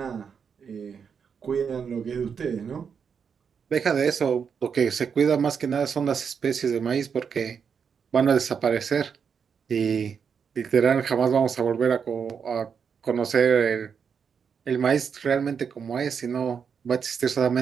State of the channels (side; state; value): left; quieter; 6.7 dB